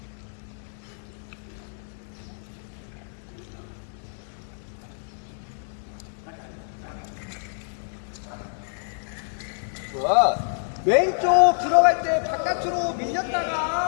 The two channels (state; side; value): silent; right; digital silence